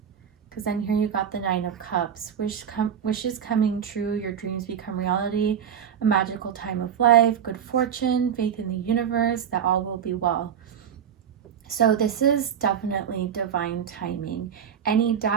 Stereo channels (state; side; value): quieter; left; 8.4 dB